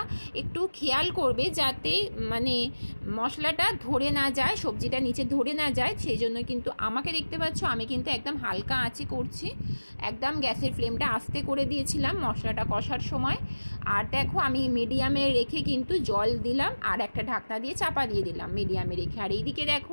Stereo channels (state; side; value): inverted; both; correlation -1.00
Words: একটু খেয়াল করবে যাতে মানে মশলাটা ধরে না যায়, সবজিটা নিচে ধরে না যায়, সেই জন্য কিন্তু আমাকে দেখতে পাচ্ছ আমি কিন্তু একদম হালকা আঁচে করছি, একদম গ্যাসের ফ্লেমটা আস্তে করে দিয়েছিলাম মশলাটা কষার সময়। আর দেখো আমি মিডিয়ামে রেখে কিন্তু জল দিলাম আর একটা ঢাকনা দিয়ে চাপা দিয়ে দিলাম মিডিয়ামে রেখে। আর এইদিকে দেখো